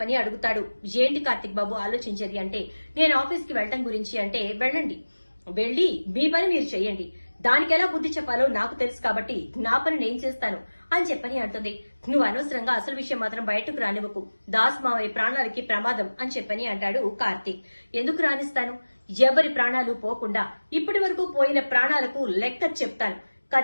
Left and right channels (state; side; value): inverted; both; correlation -1.00